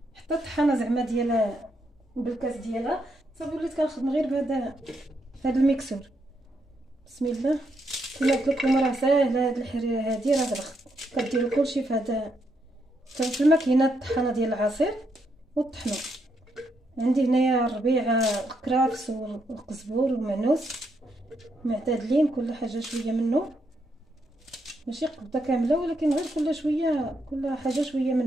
حتى الطحانه زعما ديال بالكاس ديالها. صافي وليت كنخدم غير بهذا الميكسور. بسم الله. كما قلت لكم راه ساهله هاد الحريره هادي، راه كديروا كلشي في هذا في الماكينه الطحانه ديال العصير وطحنوا. عندي هنايا الربيع، الكرافس والقزبور والمعنوس معتدلين، كل حاجه شويه منه، ماشي قبضه كامله ولكن غير كل شويه، كل حاجه شويه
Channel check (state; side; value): normal; both; correlation 0.78